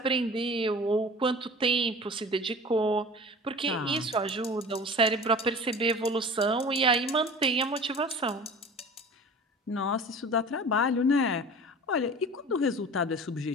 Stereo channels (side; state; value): both; normal; correlation 0.39